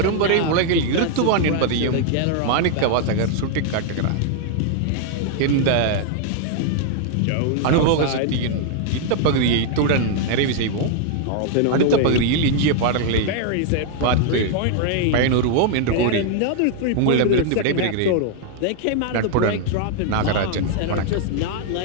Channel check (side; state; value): both; different; correlation 0.00